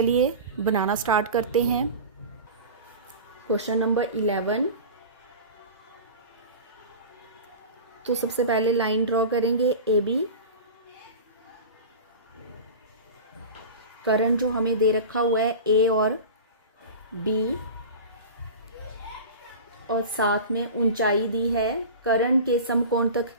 बनाना स्टार्ट करते हैं। क्वेश्चन नंबर 11, तो सबसे पहले लाइन ड्रॉ करेंगे AB। कर्ण जो हमें दे रखा हुआ है A और B, और साथ में ऊंचाई दी है, कर्ण के समकोण तक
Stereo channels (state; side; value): inverted; both; correlation -0.32